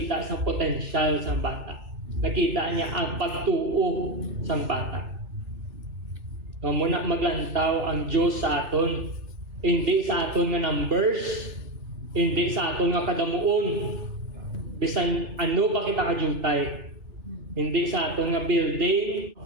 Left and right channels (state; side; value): late; left; 3.4 ms